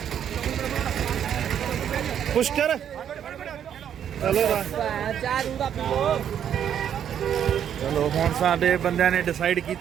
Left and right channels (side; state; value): left; quieter; 9.2 dB